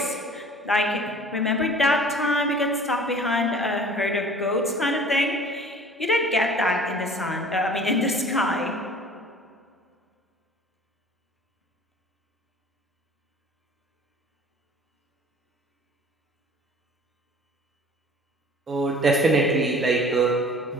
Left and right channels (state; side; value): normal; both; correlation 0.47